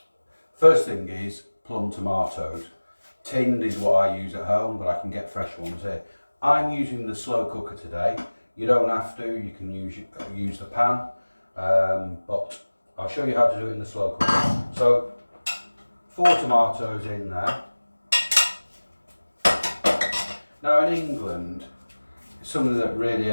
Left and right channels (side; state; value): both; inverted; correlation -1.00